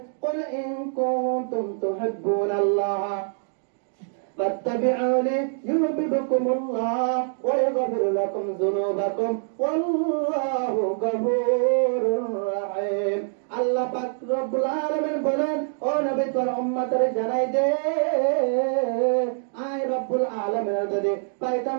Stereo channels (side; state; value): left; silent; digital silence